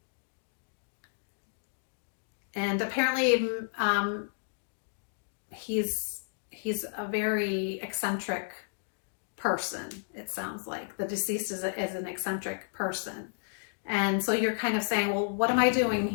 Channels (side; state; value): right; silent; digital silence